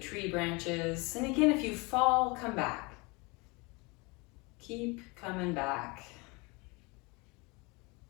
branches. And again, if you fall, come back. Keep coming back.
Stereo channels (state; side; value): quieter; right; 27.2 dB